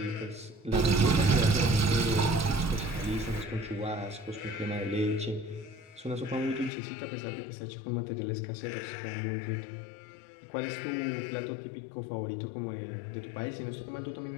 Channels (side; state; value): right; drops out; at 6.7 s